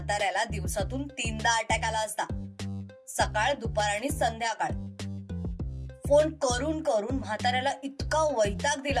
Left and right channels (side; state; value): both; identical; correlation 1.00